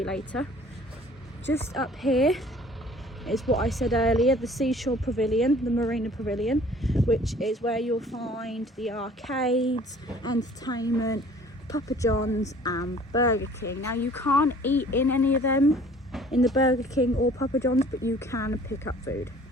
later. Just up here is what I said earlier, the Seashore Pavilion, the Marina Pavilion, which is where you'll find the arcades, entertainment, Papa John's and Burger King. Now you can't eat in any of them, in the Burger King or Papa John's, but you can pick up food.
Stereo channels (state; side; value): normal; both; correlation 0.52